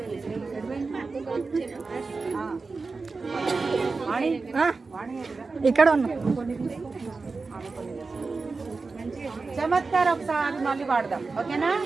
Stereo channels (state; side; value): quieter; left; 4.1 dB